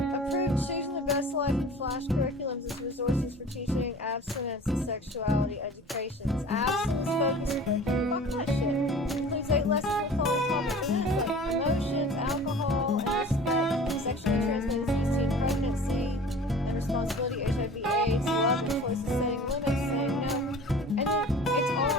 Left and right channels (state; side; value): normal; both; correlation 0.43